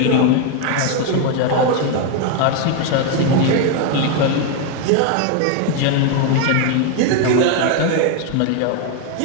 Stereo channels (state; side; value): different; both; correlation 0.01